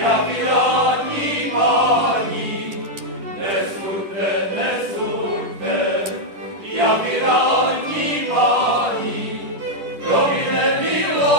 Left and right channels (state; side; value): late; left; 11 ms